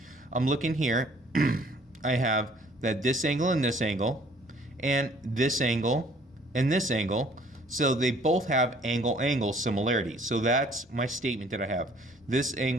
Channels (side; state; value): both; normal; correlation 0.57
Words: I'm looking here, I have that this angle and this angle, and this angle and this angle. So they both have angle-angle similarity. So that's my statement that I have. This